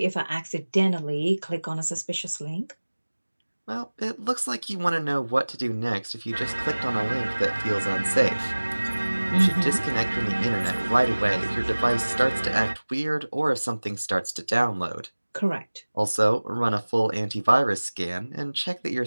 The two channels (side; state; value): both; inverted; correlation -1.00